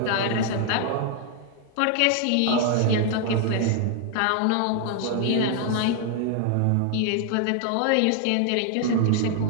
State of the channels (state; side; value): different; both; correlation 0.00